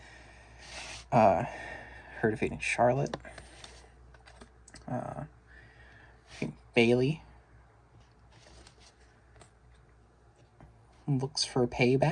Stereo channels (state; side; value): identical; both; correlation 1.00